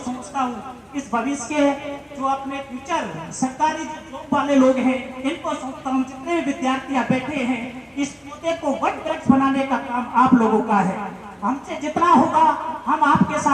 हूँ। इस भविष्य के जो अपने फ्यूचर सरकारी जॉब वाले लोग हैं, इनको समझता हूँ, जितने भी विद्यार्थी बैठे हैं, इस पौधे को वट वृक्ष बनाने का काम आप लोगों का है। हमसे जितना होगा हम आपके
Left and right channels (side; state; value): both; identical; correlation 1.00